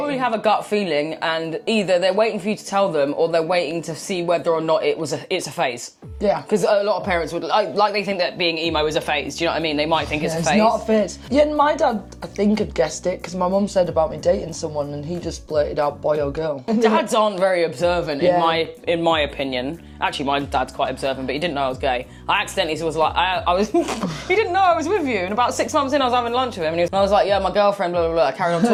have a gut feeling, and either they're waiting for you to tell them or they're waiting to see whether or not it's a phase. Yeah. Because a lot of parents would, like they think that being emo is a phase, do you know what I mean? They might think it's a phase. It's not a phase. Yeah, and my dad, I think, had guessed it, because my mum said about me dating someone and he just blurted out boy or girl. Dads aren't very observant, in my opinion. Actually, my dad's quite observant, but he didn't know I was gay. I accidentally was like, I was, he didn't know I was with you. And about 6 months in, I was having lunch with him, and I was like, yeah, my girlfriend, blah, blah, blah. I carried on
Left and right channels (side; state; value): both; identical; correlation 1.00